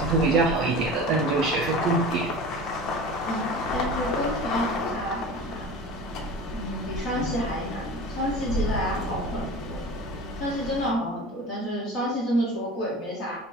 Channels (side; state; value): both; normal; correlation 0.36